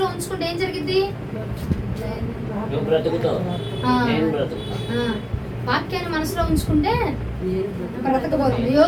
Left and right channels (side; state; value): both; identical; correlation 1.00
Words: ఉంచుకుంటే ఏం జరిగింది? వాక్యాన్ని మనసులో ఉంచుకుంటే బ్రతకబోతుంది.